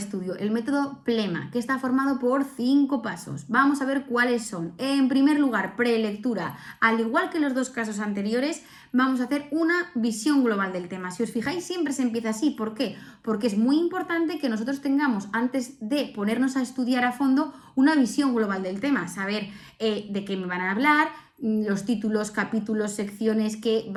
el método PLEMA, que está formado por 5 pasos. Vamos a ver cuáles son. En primer lugar, prelectura. Al igual que los dos casos anteriores, vamos a hacer una visión global del tema. Si os fijáis, siempre se empieza así. ¿Por qué? Porque es muy importante que nosotros tengamos, antes de ponernos a estudiar a fondo, una visión global del tema. Saber de qué me van a hablar, los títulos, capítulos, secciones que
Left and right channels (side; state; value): both; identical; correlation 1.00